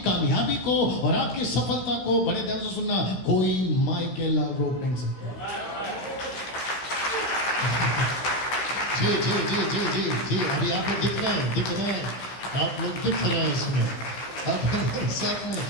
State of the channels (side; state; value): right; late; 15 ms